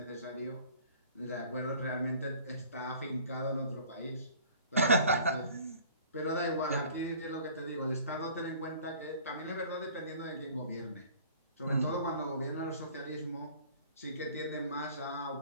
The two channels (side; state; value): both; inverted; correlation -0.49